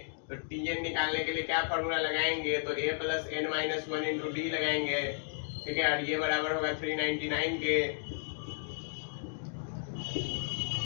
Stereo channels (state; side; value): silent; right; digital silence